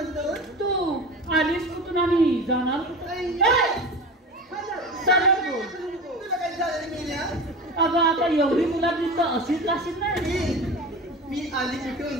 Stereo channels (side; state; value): both; normal; correlation 0.31